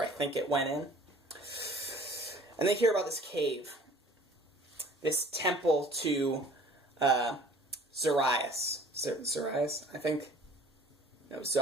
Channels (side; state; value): both; normal; correlation 0.50